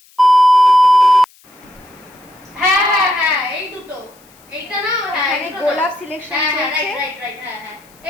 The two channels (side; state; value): left; noise; hiss, 29 dB below the sound